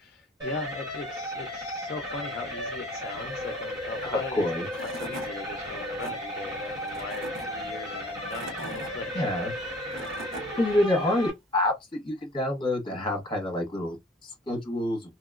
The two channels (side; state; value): both; normal; correlation 0.49